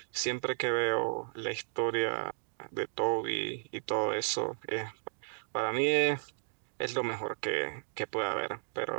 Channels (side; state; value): left; silent; digital silence